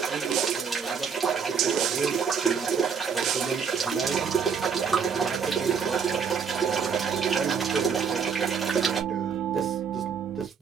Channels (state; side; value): quieter; left; 6.4 dB